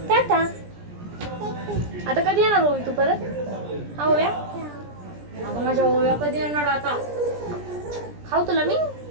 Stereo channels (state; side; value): late; left; 17 ms